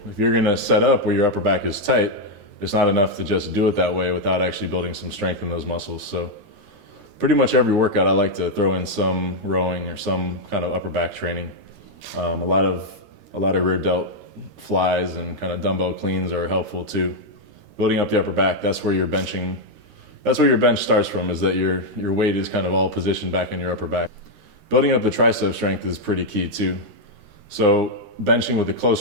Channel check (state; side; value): late; left; 13 ms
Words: If you're going to set up where your upper back is tight, it's not enough to just do it that way without actually building some strength in those muscles. So pretty much every workout I like to throw in some rowing or some kind of upper back training. A lot of rear delt flies and kind of dumbbell cleans are helpful too. Building up the upper back, that's where your bench starts from, is that your weight is kind of all positioned back in your upper back. Building up the tricep strength is pretty key too. So benching with a